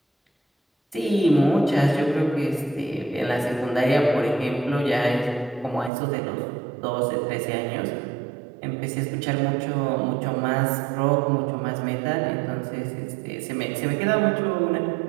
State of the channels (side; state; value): left; drops out; at 5.9 s